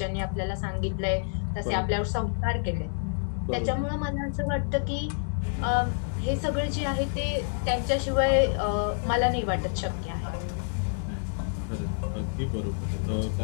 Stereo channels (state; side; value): silent; right; digital silence